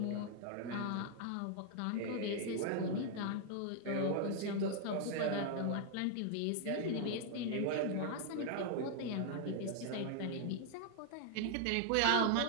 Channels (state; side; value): different; both; correlation 0.00